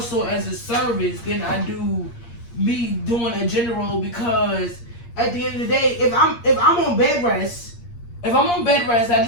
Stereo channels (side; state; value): right; late; 8.6 ms